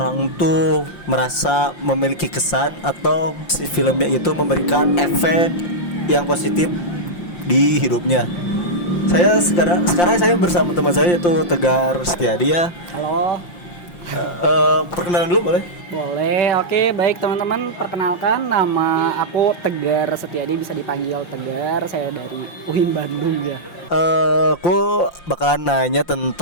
tuh merasa memiliki kesan atau si filmnya itu memberikan efek yang positif di hidupnya. Sekarang saya bersama teman saya yaitu Tegar Setiadi ya. Halo, Perkenalan dulu boleh? boleh. Oke, baik teman-teman. Perkenalkan, nama aku Tegar Setiadi, bisa dipanggil Tegar. Saya dari UIN Bandung ya. Aku bakalan nanya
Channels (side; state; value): right; late; 5.7 ms